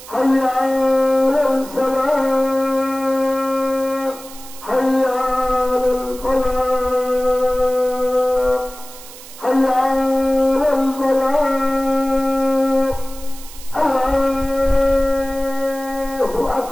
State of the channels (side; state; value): right; noise; hiss, 17 dB below the sound